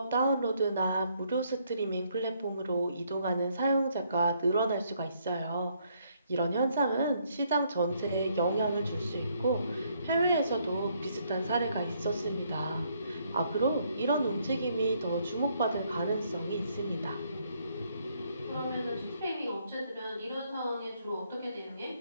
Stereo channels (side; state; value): both; inverted; correlation -0.70